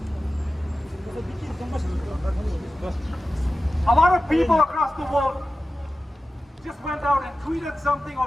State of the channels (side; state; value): both; normal; correlation 0.94